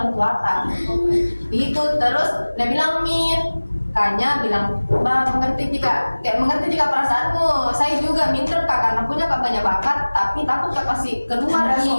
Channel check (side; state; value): both; inverted; correlation -1.00